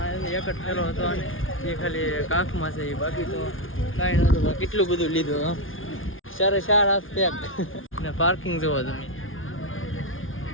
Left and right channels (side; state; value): right; late; 0.58 ms